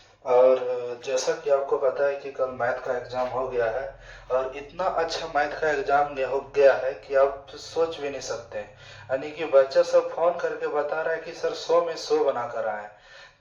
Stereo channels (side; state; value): both; identical; correlation 1.00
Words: और जैसा कि आपको पता है कि कल मैथ का एग्जाम हो गया है और इतना अच्छा मैथ का एग्जाम हो गया है कि आप सोच भी नहीं सकते। यानी कि बच्चा सब फोन करके बता रहा है कि सर 100 में 100 बना कर आए।